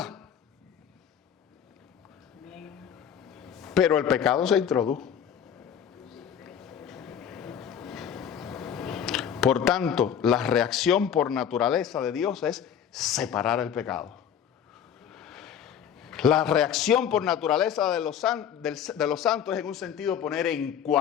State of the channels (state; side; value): quieter; right; 8.6 dB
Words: Pero el pecado se introdujo. Por tanto, la reacción por naturaleza de Dios es separar el pecado. La reacción por naturaleza de los santos es en un sentido poner en